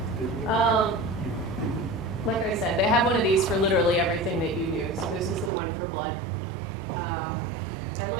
Like I said, they have one of these for literally everything that you do. So this is the one for blood. I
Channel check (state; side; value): drops out; left; at 5.5 s